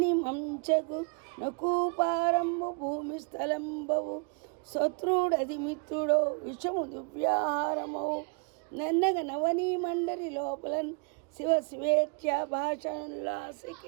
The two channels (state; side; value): quieter; left; 36.2 dB